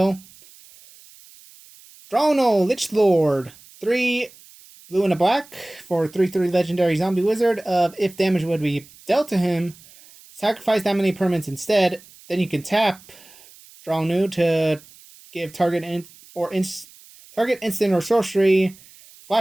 Drono, Lich Lord. 3 blue and a black for 3/3 legendary zombie wizard of if damage would be dealt to him, sacrifice that many permanents instead. Then you can tap draw new to give target instant or sorcery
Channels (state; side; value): noise; right; hiss, 24 dB below the sound